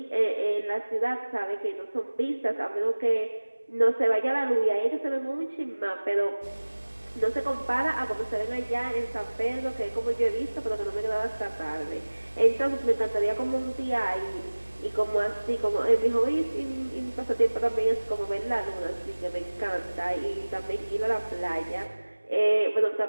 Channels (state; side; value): inverted; both; correlation -1.00